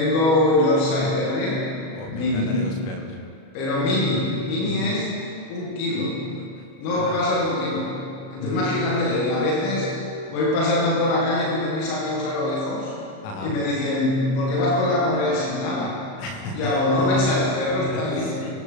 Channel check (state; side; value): late; right; 38 ms